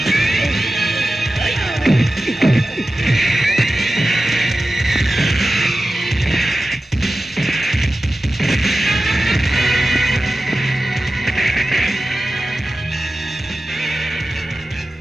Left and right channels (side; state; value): both; normal; correlation 0.94